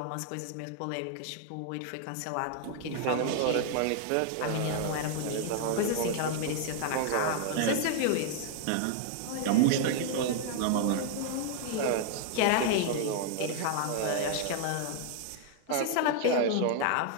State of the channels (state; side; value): different; both; correlation 0.00